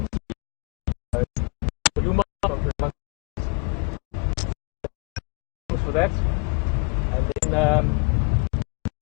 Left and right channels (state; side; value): quieter; right; 30.4 dB